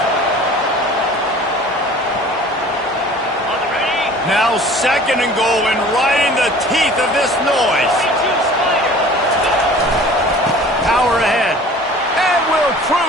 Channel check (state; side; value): normal; both; correlation 0.46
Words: Now second and goal, and right in the teeth of this noise. Power ahead. And will